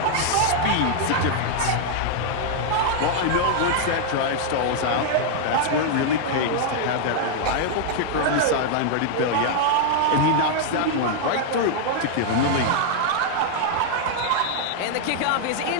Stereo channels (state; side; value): different; both; correlation -0.01